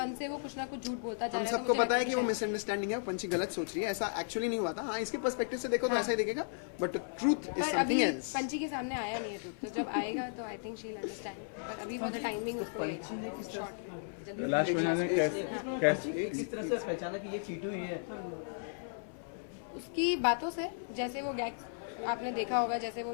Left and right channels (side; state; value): right; silent; 55 dB below the other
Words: से वो कुछ ना कुछ झूठ बोलता जा रहा है। सबको पता है कि वो मिसअंडरस्टैंडिंग है, पंछी गलत सोच रही है, ऐसा एक्चुअली नहीं हुआ था। हाँ, इसके पर्सपेक्टिव से देखो तो ऐसा ही दिखेगा, but truth is something else. पंछी के सामने आया नहीं है ट्रूथ, तो जब आएगा तो I think she will understand, but अभी फॉर द टाइमिंग पंछी ने किस तरह लास्ट में कैसे किस तरह से पहचाना कि ये टीटू ही है? उसकी बातों से, जैसे वो गैग आपने देखा होगा, जैसे वो